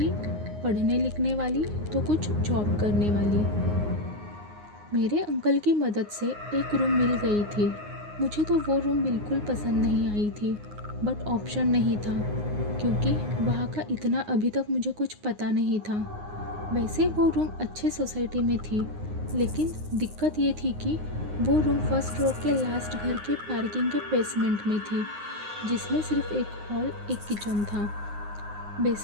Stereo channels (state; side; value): late; left; 9.6 ms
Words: पढ़ने लिखने वाली, तो कुछ जॉब करने वाली। मेरे अंकल की मदद से एक रूम मिल गई थी। मुझे तो वो रूम बिल्कुल पसंद नहीं आई थी, बट ऑप्शन नहीं था क्योंकि वहाँ का इतना अभी तक मुझे कुछ पता नहीं था। वैसे वो रूम अच्छे सोसाइटी में थी, लेकिन दिक्कत ये थी कि वो रूम फर्स्ट रो के लास्ट घर के पार्किंग के बेसमेंट में थी, जिसमें सिर्फ एक हॉल, एक किचन था।